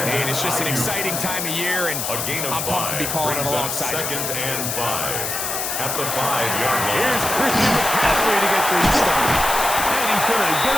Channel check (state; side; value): noise; left; hiss, 2 dB below the sound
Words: And it's just an exciting time of year, and I'm pumped to be calling it alongside you. Second and 5 at the 5-yard line. Here's Christian McCaffrey to get things started. And he's going to get